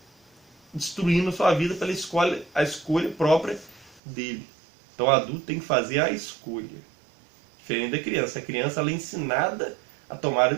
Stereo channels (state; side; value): drops out; left; at 4.0 s